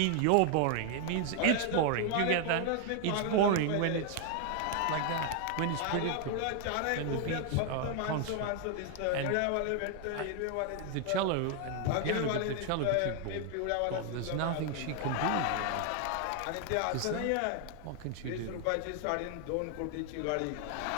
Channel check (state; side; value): different; both; correlation 0.00